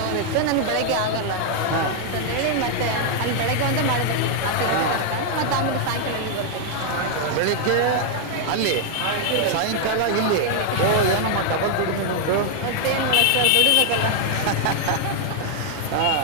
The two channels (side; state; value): both; different; correlation 0.00